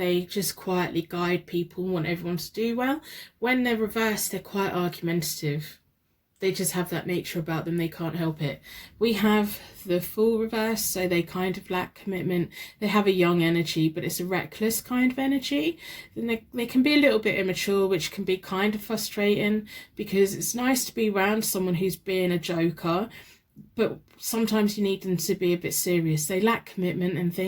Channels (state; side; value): identical; both; correlation 1.00